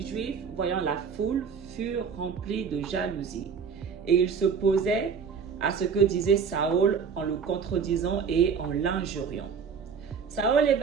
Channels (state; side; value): quieter; left; 6.2 dB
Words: Juifs, voyant la foule, furent remplis de jalousie et ils s'opposaient à ce que disait Saül en le contredisant et en l'injuriant. Saül et